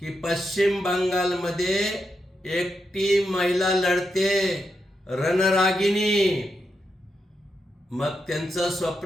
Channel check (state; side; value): normal; both; correlation 0.84